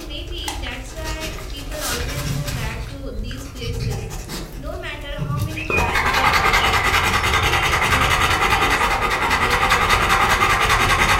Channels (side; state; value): both; identical; correlation 1.00